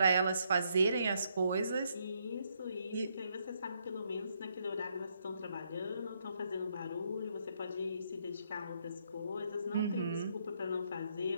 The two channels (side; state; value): both; inverted; correlation -0.75